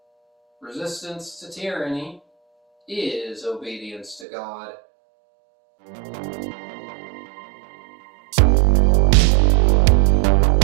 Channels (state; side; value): drops out; left; at 4.2 s